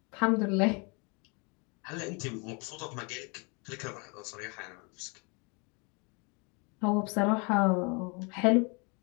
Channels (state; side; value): quieter; right; 32.1 dB